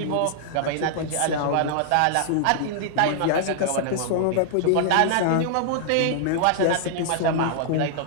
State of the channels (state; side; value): different; both; correlation -0.01